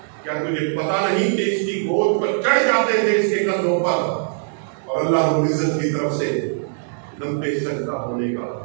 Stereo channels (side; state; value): left; silent; digital silence